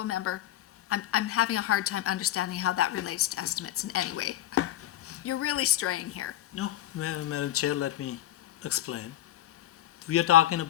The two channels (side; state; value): right; quieter; 12.9 dB